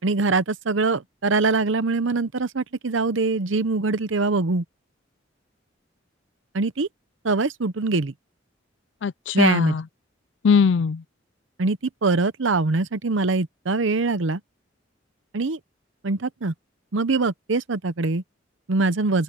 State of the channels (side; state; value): both; normal; correlation 0.24